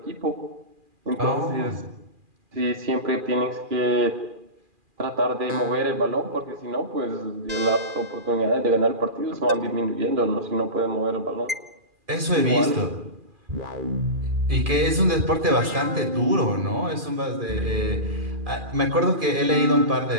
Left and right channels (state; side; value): late; left; 2.4 ms